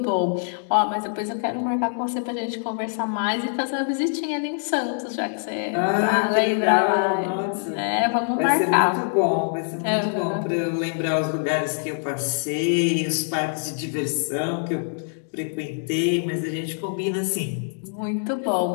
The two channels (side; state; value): right; silent; digital silence